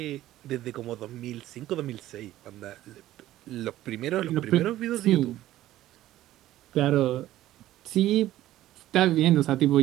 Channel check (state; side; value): quieter; left; 14.4 dB